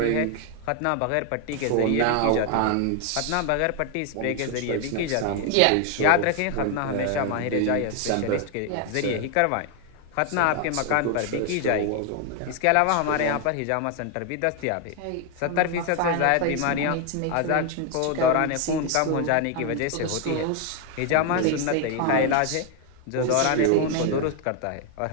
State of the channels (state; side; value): different; both; correlation 0.01